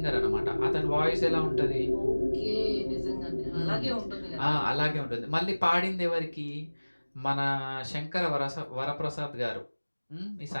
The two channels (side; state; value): both; inverted; correlation -1.00